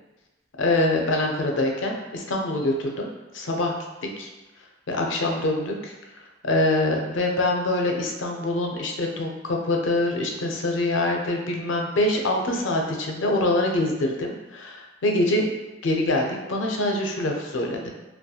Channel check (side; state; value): both; normal; correlation 0.18